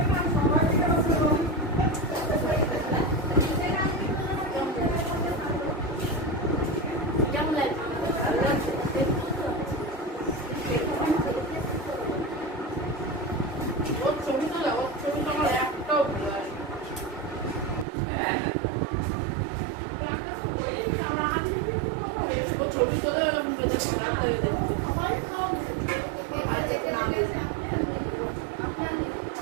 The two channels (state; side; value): drops out; left; at 17.9 s